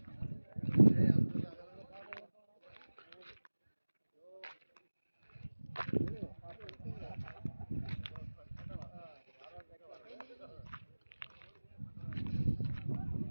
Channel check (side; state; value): both; inverted; correlation -1.00